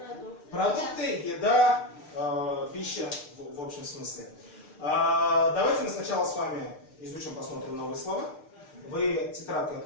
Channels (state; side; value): late; right; 6.7 ms